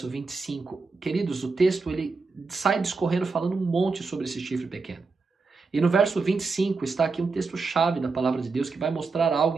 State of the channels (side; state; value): left; quieter; 4.3 dB